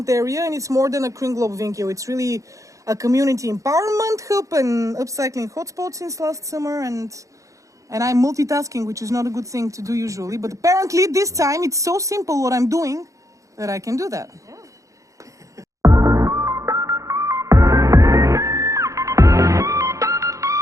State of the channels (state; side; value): late; left; 0.16 ms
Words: area, and it's more than a kringloopwinkel. It's really a community empowerment hub and upcycling hotspot since last summer, and I'm multitasking, which is not a good thing to do usually. But apparently this time it's so simple what I'm doing that I can do that.